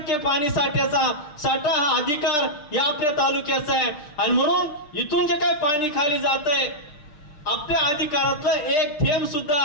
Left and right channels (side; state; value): right; late; 6.6 ms